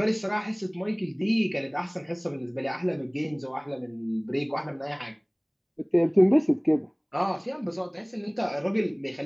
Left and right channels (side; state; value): both; identical; correlation 1.00